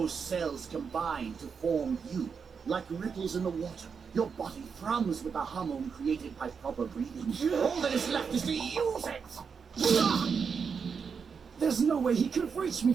cells combine to form you, like ripples in the water. Your body thrums with the hormone created by proper breathing. All that is left is to use it. There's no way he could reach me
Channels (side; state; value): left; quieter; 6.0 dB